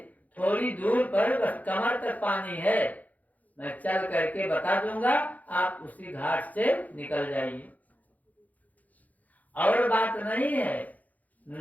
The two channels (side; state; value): right; late; 0.078 ms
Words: थोड़ी दूर पर बस कमर तक पानी है, मैं चल करके बता दूंगा, आप उसी घाट से निकल जाइए। और बात नहीं है,